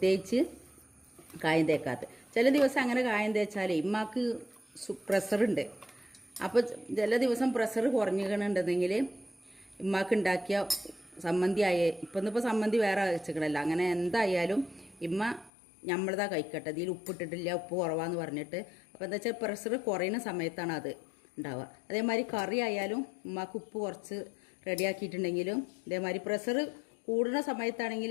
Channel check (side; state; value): right; drops out; at 15.5 s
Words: കായം തേക്കാത്തത്. ചില ദിവസം അങ്ങനെ കായം തേച്ചാൽ ഉമ്മാക്ക് പ്രഷറുണ്ട്. അപ്പോൾ ചില ദിവസം പ്രഷർ കുറഞ്ഞിട്ടുണ്ടെങ്കിൽ ഉമ്മാക്ക് ഉണ്ടാക്കിയ സമ്മന്തി ഇന്നിപ്പോൾ സമ്മന്തി വേറെ വെച്ചിക്കണല്ലോ. അങ്ങനെ എന്തായാലും ഇമ്മ നമ്മളതാ കഴിക്കട്ടെ, ഇതിൽ ഉപ്പിട്ടിട്ടില്ല, ഉപ്പ് കുറവാന്ന് പറഞ്ഞിട്ട്. അപ്പോൾ എന്താ വെച്ചാൽ പ്രഷർ കുറയുന്ന സമയത്താണ് അത് ഉണ്ടാവുക. അതേമാതിരി കറി ആയാലും ഉമ്മാക്ക് ഉപ്പ് കുറച്ച് റെഡിയാക്കിയിട്ടുണ്ടെങ്കിലും ഇതേമാതിരി പ്രഷർ കൂടുന്ന സമയത്താണെങ്കിൽ